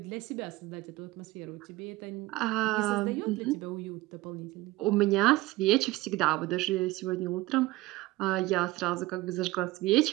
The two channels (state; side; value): quieter; left; 19.0 dB